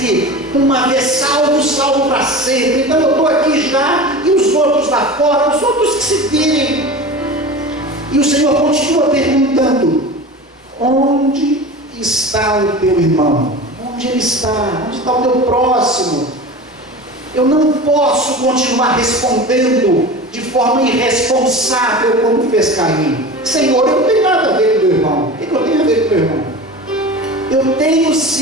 uma vez salvo para sempre. Então eu estou aqui já, e os outros lá fora, os outros que se virem. E o Senhor continua perguntando: onde está o teu irmão? Onde ele está? Onde está o meu próximo? Eu não posso continuar respondendo de forma irresponsável como fez Caim. Senhor, eu não tenho nada a ver com o meu irmão. O que eu tenho a ver com o meu irmão? Eu tenho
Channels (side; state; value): both; normal; correlation 0.33